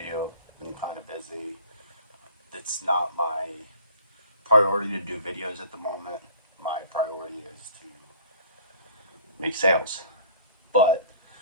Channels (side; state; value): both; inverted; correlation -0.48